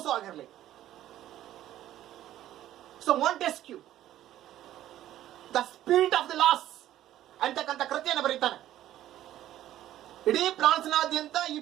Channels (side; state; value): left; quieter; 13.0 dB